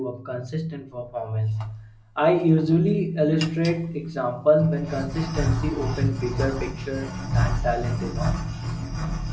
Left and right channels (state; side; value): identical; both; correlation 1.00